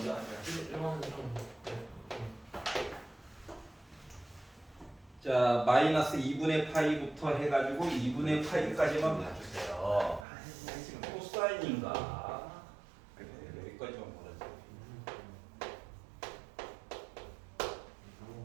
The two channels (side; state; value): left; drops out; at 10.2 s